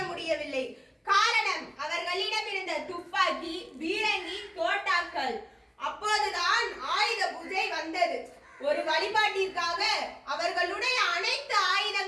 முடியவில்லை. காரணம், அவர்களிடம் இருந்த துப்பாக்கி, பீரங்கி, தோட்டாக்கள். அப்போதுதான் ஆயுத பூஜை வந்தது. ஒரு வழிபாட்டிற்காக அவர்களுடைய அனைத்து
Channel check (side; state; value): both; identical; correlation 1.00